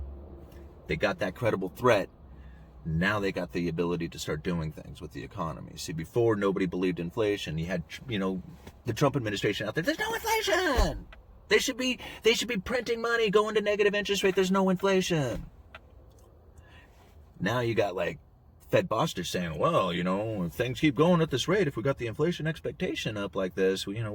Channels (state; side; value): identical; both; correlation 1.00